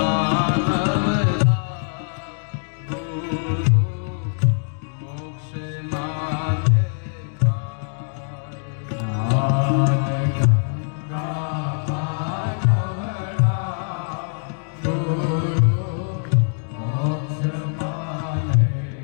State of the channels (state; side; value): silent; right; digital silence